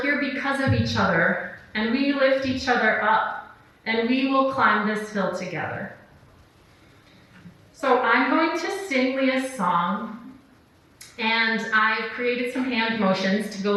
here because of each other, and we lift each other up, and we will climb this hill together. So I'm going to sing Leah's song, and I've created some hand motions to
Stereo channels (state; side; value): identical; both; correlation 1.00